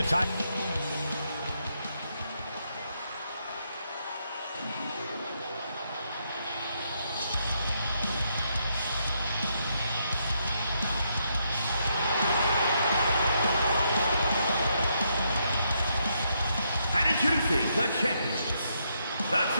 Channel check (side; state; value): both; inverted; correlation -0.77